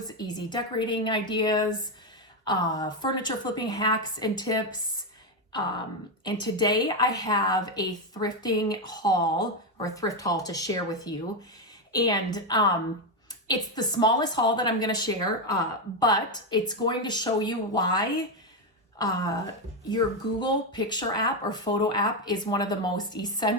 easy decorating ideas, furniture flipping hacks and tips. And today I have a thrifting haul or thrift haul to share with you. And it's the smallest haul that I'm going to share, but it's going to show you why your Google Picture app or photo app is one of the most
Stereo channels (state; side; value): normal; both; correlation 0.07